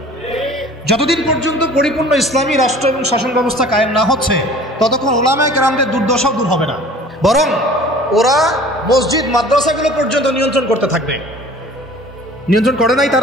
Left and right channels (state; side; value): normal; both; correlation 0.46